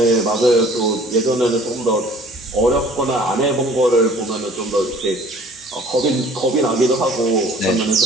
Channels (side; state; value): both; normal; correlation 0.52